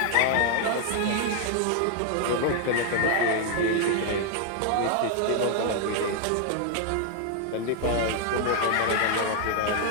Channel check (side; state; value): both; different; correlation 0.00